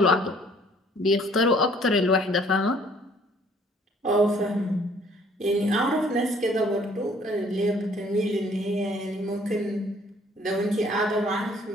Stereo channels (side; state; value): both; normal; correlation 0.58